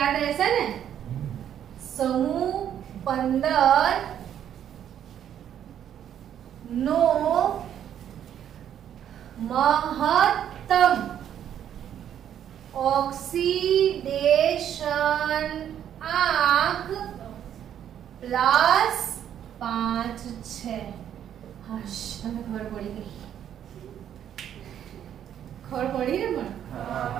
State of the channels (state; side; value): quieter; left; 9.9 dB